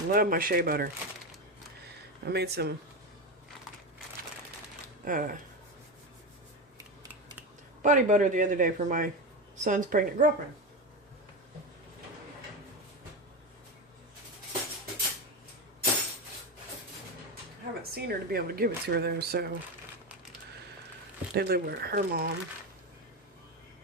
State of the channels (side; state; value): both; normal; correlation 0.17